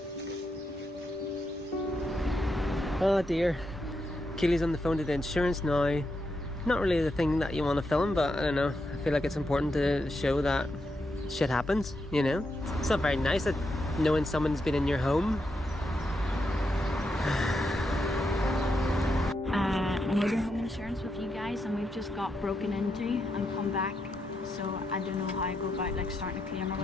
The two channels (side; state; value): both; normal; correlation 0.83